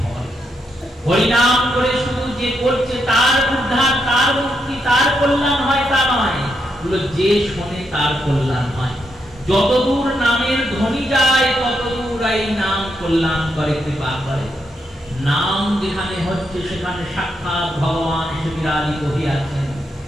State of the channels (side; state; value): both; normal; correlation 0.81